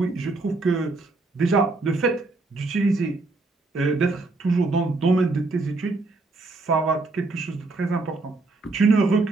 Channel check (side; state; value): left; quieter; 3.4 dB